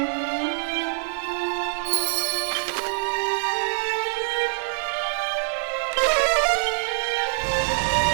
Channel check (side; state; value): left; silent; 61 dB below the other